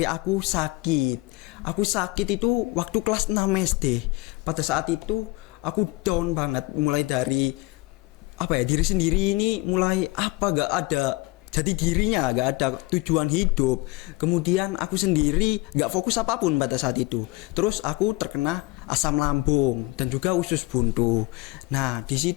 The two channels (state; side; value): quieter; right; 23.0 dB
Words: aku sakit. Aku sakit itu waktu kelas 6 SD. Pada saat itu aku down banget, mulai dari apa ya, diri sendiri ini mulai apa, gak ada jadi dirinya, gak ada tujuan hidup. Kemudian aku sendiri gak fokus apapun pada saat itu. Terus aku terkena asam lambung dan juga usus buntu. Nah, di